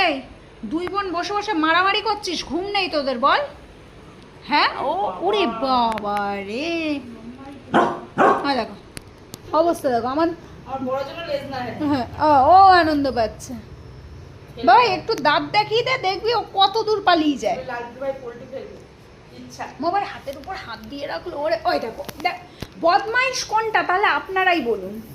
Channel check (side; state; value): both; identical; correlation 1.00